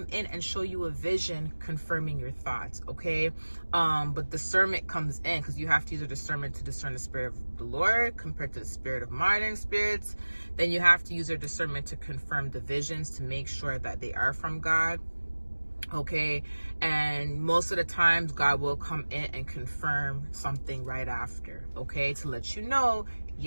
in and show you a vision confirming your thoughts, okay? But discernment comes in, because you have to use a discernment to discern the spirit of the Lord compared to the spirit of modern spirits. Then you have to use your discernment to confirm the visions to make sure that they are from God, okay? And most of the times God will come in and confirm something right after, okay, to let you know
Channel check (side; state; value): both; inverted; correlation -1.00